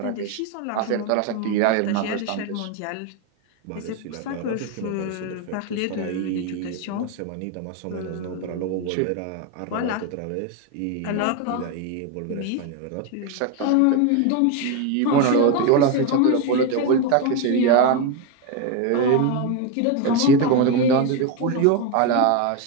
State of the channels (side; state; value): both; different; correlation 0.02